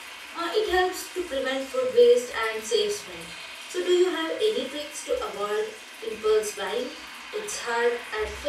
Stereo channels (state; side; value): identical; both; correlation 1.00